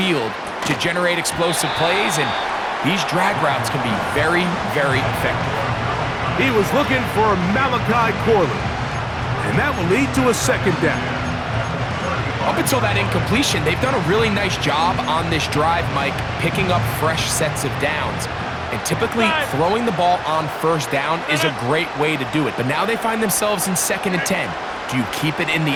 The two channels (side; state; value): both; identical; correlation 1.00